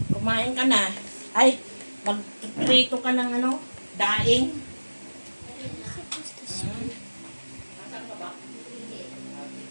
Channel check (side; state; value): both; inverted; correlation -1.00